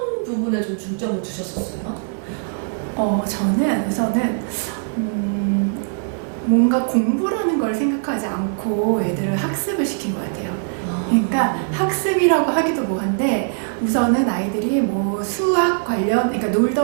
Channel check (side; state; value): left; silent; digital silence